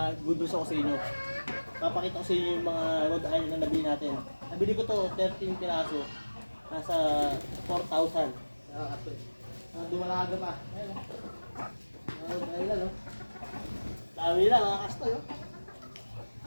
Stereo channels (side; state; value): both; inverted; correlation -1.00